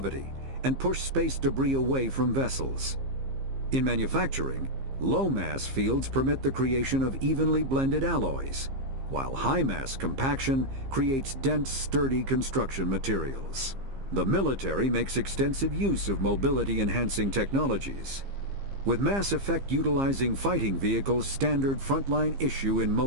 and push space debris away from vessels. In manufacturing, low-mass fields permit the creation of evenly blended alloys, while high-mass compaction creates dense, sturdy construction materials. The military makes extensive use of mobility-enhancing technologies, with mass effect utilizing fighting vehicles standard frontline issue in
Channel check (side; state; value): left; late; 15 ms